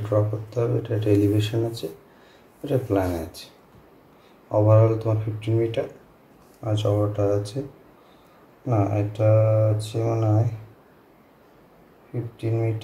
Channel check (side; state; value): both; identical; correlation 1.00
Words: ড্র করতে হবে, এটা একটা এলিভেশন আছে, এটা প্ল্যান আছে। ওভারঅল তোমার 15 মিটার আর চওড়াটা আছে, না এটা আছে মনে হয় 15